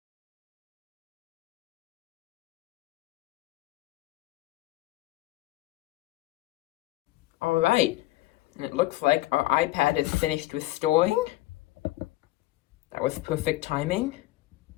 All right, and it looks like our iPad is finished restoring. That was perfect timing.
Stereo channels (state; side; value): quieter; right; 17.9 dB